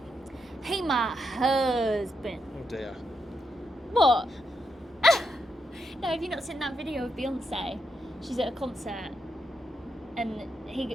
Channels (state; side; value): normal; both; correlation 0.82